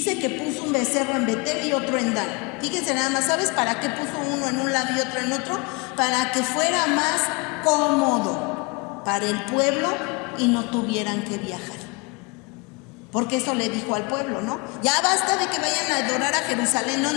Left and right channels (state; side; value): quieter; right; 29.8 dB